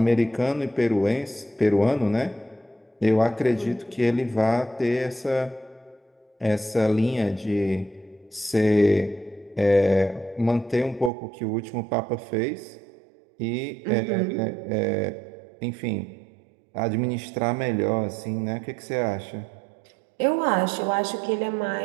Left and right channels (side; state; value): left; drops out; at 11.1 s